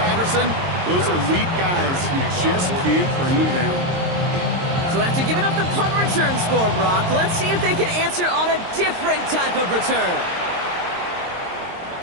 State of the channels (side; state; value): left; late; 22 ms